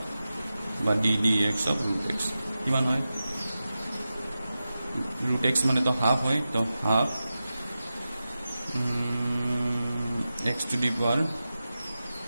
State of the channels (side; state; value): both; inverted; correlation -0.93